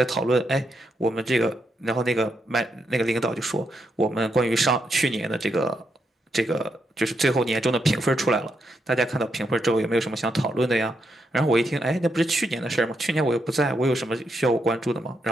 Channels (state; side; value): normal; both; correlation 0.81